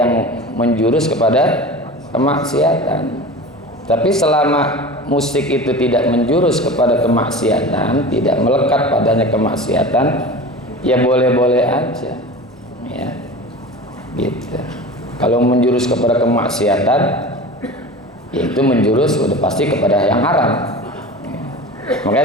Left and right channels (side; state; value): both; normal; correlation 0.34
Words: menjurus kepada kemaksiatan. Tapi selama musik itu tidak menjurus kepada kemaksiatan, tidak melekat padanya kemaksiatan, ya boleh-boleh aja, ya, gitu. Kalau menjurus kepada kemaksiatan, ya itu menjurus udah pasti kepada yang haram.